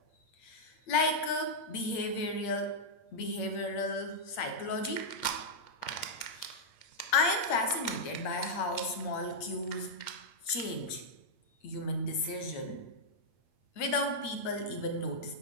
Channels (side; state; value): right; late; 8.7 ms